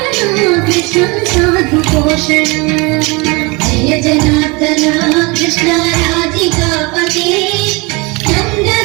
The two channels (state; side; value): quieter; left; 27.3 dB